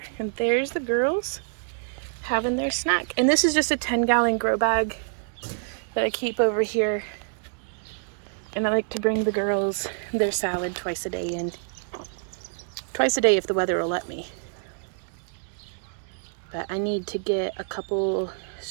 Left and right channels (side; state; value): left; silent; digital silence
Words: and there's the girls having their snack. And this is just a 10-gallon grow bag that I keep over here. And I like to bring the girls their salad twice a day, and twice a day if the weather will let me. But I need to get a couple